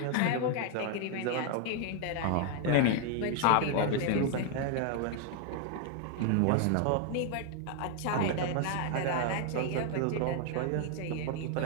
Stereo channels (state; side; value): different; both; correlation 0.00